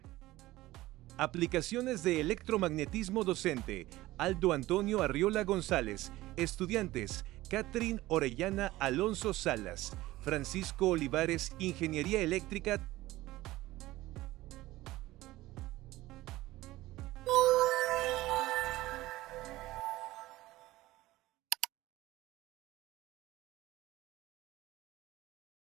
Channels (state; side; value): quieter; left; 17.4 dB